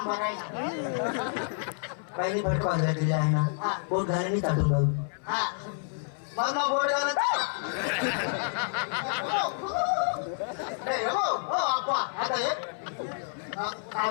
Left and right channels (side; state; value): right; silent; 57 dB below the other